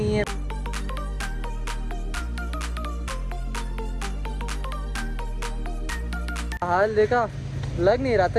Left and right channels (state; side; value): identical; both; correlation 1.00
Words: है। हाल देखा, लग नहीं रहा